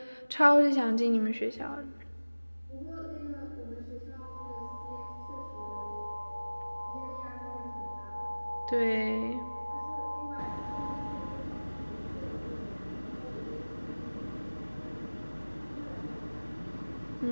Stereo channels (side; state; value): both; inverted; correlation -1.00